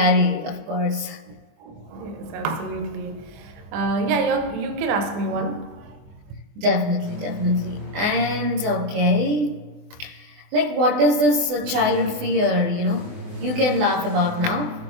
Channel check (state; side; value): late; left; 24 ms